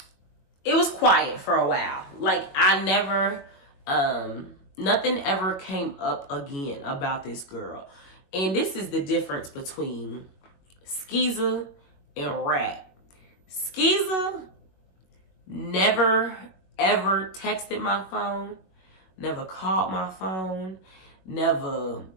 it was quiet for a while. Like, I never, nothing ever came up again about this girl. And this is the difference between Skeezer and Rat. Skeezer never, ever texted my phone, never called my phone, never,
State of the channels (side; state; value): right; late; 21 ms